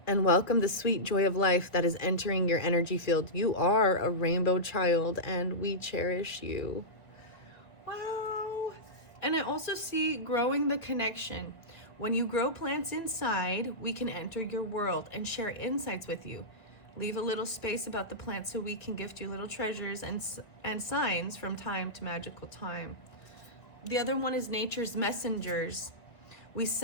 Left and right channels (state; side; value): late; right; 2.0 ms